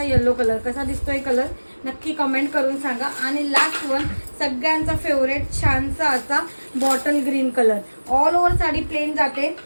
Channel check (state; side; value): inverted; both; correlation -1.00